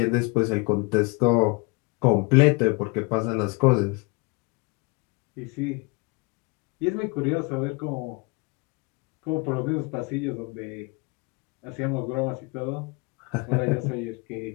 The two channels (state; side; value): quieter; right; 29.2 dB